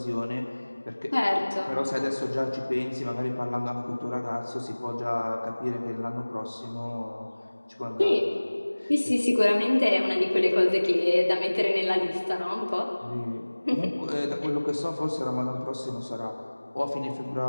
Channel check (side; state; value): both; inverted; correlation -1.00